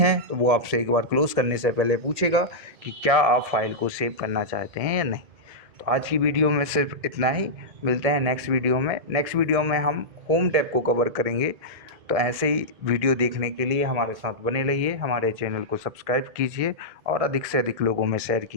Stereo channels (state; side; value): late; left; 1.6 ms